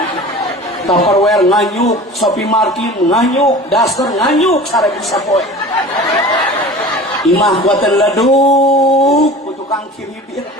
Tupperware nganyuk, Shopee Martin nganyuk, daster nganyuk, sare bisa poe. Imah buatan leduk, ku tukang kiribir.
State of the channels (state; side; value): normal; both; correlation 0.39